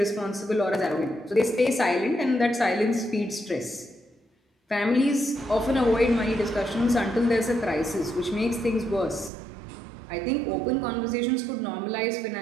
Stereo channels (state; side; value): drops out; left; at 9.3 s